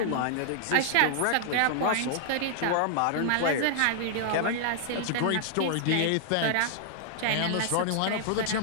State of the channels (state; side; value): different; both; correlation -0.01